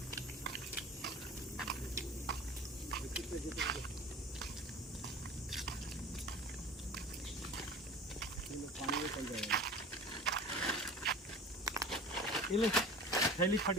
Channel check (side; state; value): both; normal; correlation 0.39